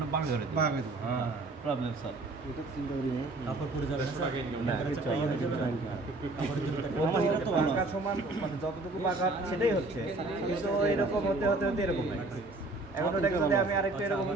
বাঁকা করে দেবেন। বাগে তো। হ্যাঁ, প্রবলেম সলভ। এটা তো চিন্তা করি না। কাপড় পরে যাবে না স্যার? না, দেখা যাচ্ছে টাই হয়ে যাবে না? কাপড়ের জন্য একটা বাঁকা সমান মানে যতটুকু বাঁকা সেটাই হচ্ছে, কিন্তু এরকম হতে হতে হতে এরকম হয়ে গেছে। এখন ওটাকে যদি আমি আরেকটু এরকম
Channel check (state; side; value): quieter; left; 3.0 dB